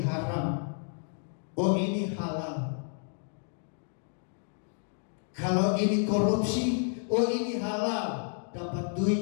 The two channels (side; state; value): right; silent; 57 dB below the other